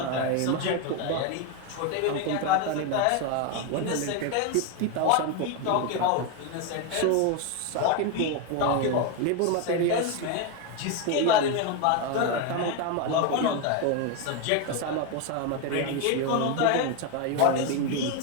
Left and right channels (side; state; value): both; different; correlation 0.02